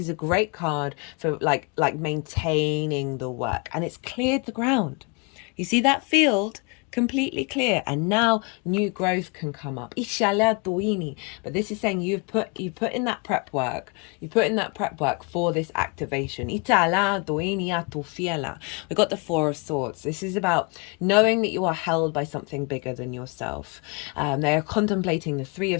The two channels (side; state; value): right; quieter; 31.3 dB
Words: a great card for like maintaining the work, and it's cleared the ground. You see that field? Completely clear, and now new growth can come up. But this is saying you've put in that prep work. You put in that prep work for this activation. We got the Four of Swords. This is about knowing that you are held by something bigger than yourself. They are contemplating the Three